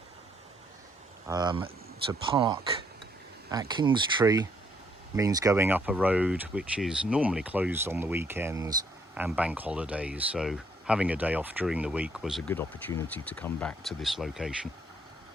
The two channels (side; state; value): both; normal; correlation 0.69